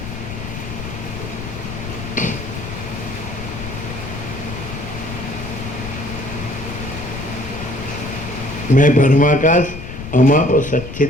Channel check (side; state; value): left; noise; rumble, 9 dB below the sound